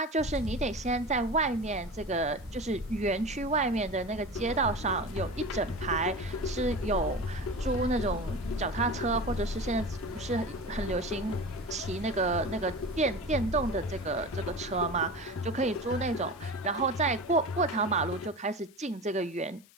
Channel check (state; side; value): noise; left; hiss, 27 dB below the sound